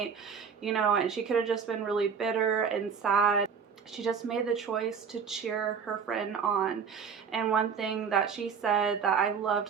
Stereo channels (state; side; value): quieter; left; 6.5 dB